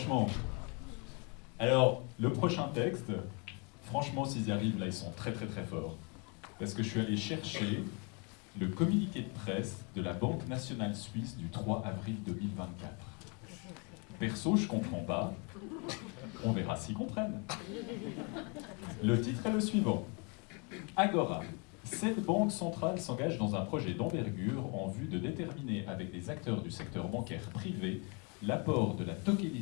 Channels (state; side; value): quieter; right; 33.5 dB